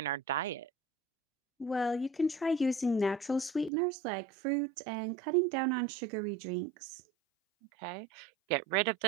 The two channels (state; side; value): drops out; left; at 3.7 s